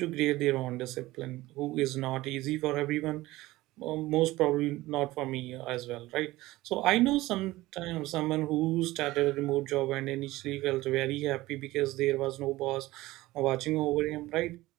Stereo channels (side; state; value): left; quieter; 18.2 dB